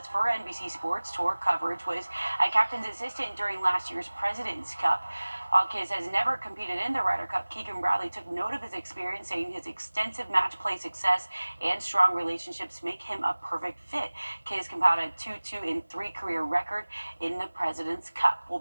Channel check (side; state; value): both; inverted; correlation -1.00